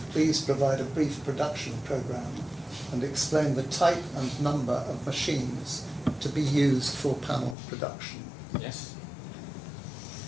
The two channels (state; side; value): drops out; right; at 7.6 s